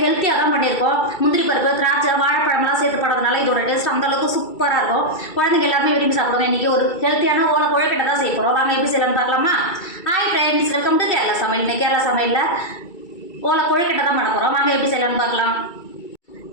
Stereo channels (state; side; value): late; right; 2.3 ms